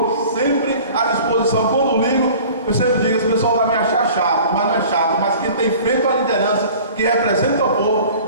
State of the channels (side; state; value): both; inverted; correlation -0.45